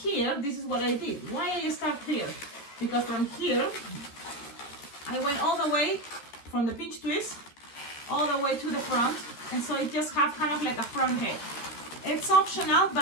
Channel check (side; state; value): right; late; 13 ms